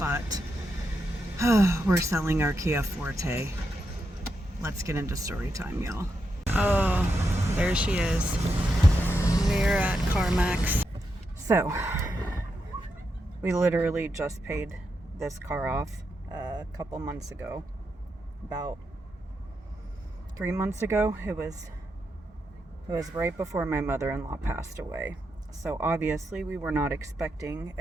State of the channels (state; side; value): normal; both; correlation 0.84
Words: we're selling our Kia Forte. Let's get into story time, y'all. Oh, there she is. We're at CarMax. So, we literally just paid this car off a couple months ago. About 3 months ago. It was right before my mother-in-law passed away. So obviously we were not expecting